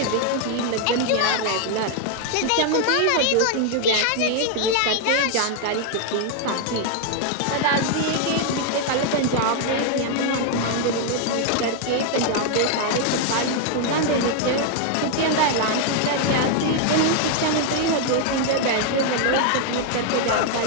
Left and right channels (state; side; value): different; both; correlation 0.00